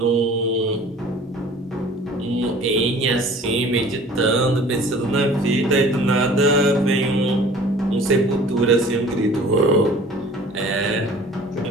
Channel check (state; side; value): normal; both; correlation 0.48